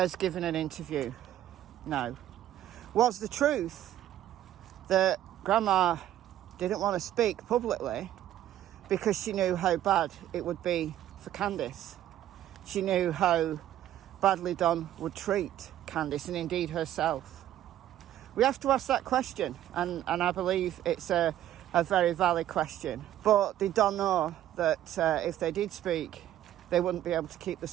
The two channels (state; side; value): quieter; left; 12.4 dB